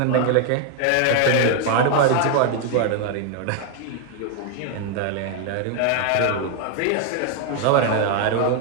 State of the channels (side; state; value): both; different; correlation 0.01